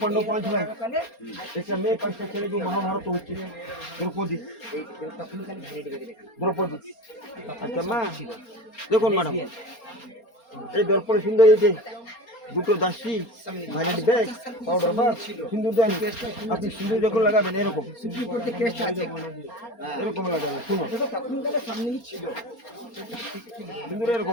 পাণ্ডব 5 ভাই, একটা মেয়ে 5টা ছেলে, যে মহাভারত হচ্ছে। দ্রৌপদী, আচ্ছা মা দেখুন ম্যাডাম, এই দর্পণে সুন্দর হয়েছে, দুটো দাসী, ভাইলেট ব্যাগ, পাউডার বাগ, সিঁদুর দেন। আপনি সিঁদুর যখন লাগাবেন এরকম এরকম লাগাবেন, শুনো সিঁদুর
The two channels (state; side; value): late; right; 4.3 ms